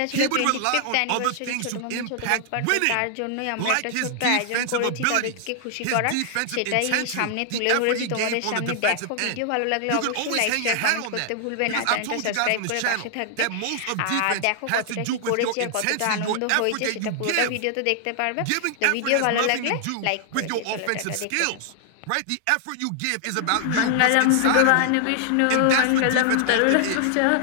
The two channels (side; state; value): both; different; correlation 0.00